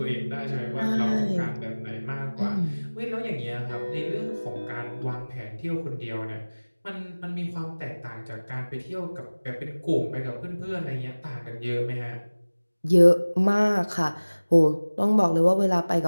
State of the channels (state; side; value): inverted; both; correlation -1.00